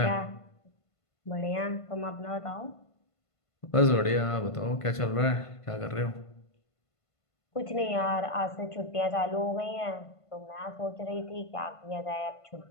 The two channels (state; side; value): late; right; 1.5 ms